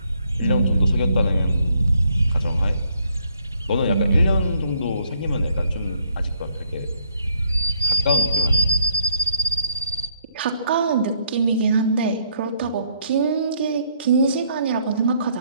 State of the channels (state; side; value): inverted; both; correlation -0.69